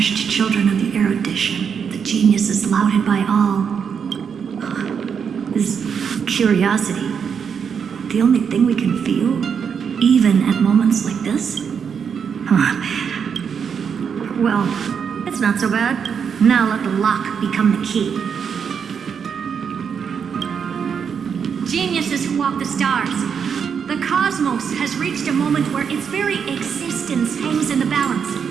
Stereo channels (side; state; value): left; quieter; 6.9 dB